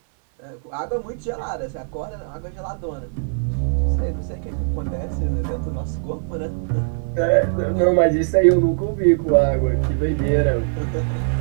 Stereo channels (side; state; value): left; silent; 59 dB below the other